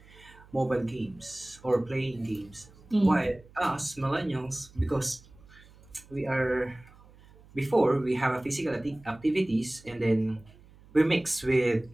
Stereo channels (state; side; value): noise; right; hum, 24 dB below the sound